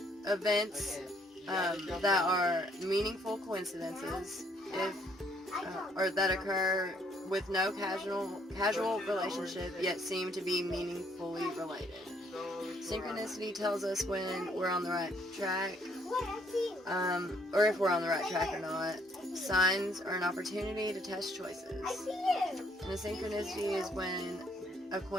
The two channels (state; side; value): normal; both; correlation 0.67